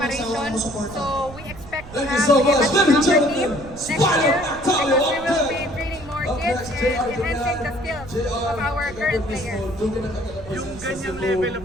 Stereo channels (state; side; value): noise; right; rumble, 16 dB below the sound